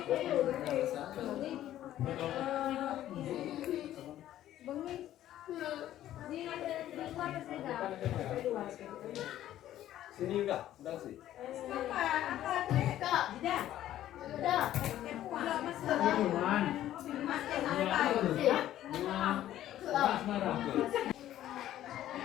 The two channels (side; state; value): right; quieter; 12.7 dB